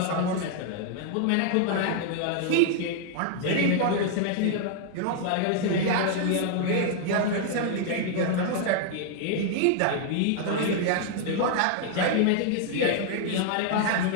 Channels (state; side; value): different; both; correlation 0.00